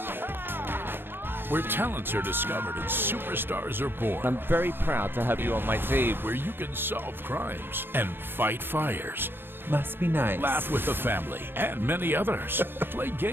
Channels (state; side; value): late; left; 0.10 ms